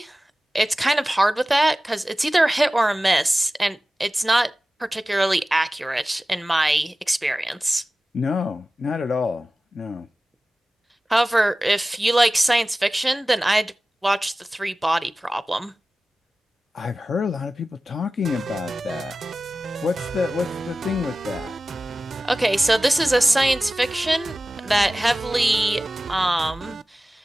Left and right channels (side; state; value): both; normal; correlation 0.96